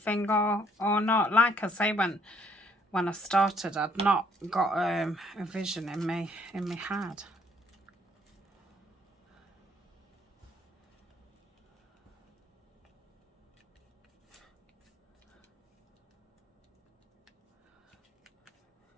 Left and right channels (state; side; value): normal; both; correlation 0.65